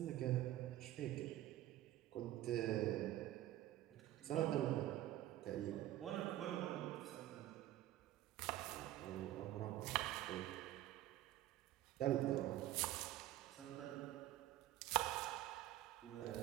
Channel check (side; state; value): left; quieter; 14.2 dB